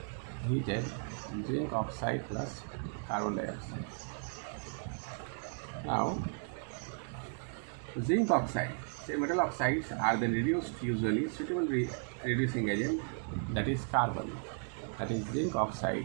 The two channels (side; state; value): left; silent; 54 dB below the other